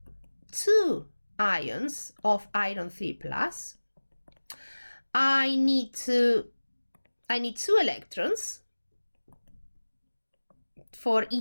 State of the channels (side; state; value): both; inverted; correlation -1.00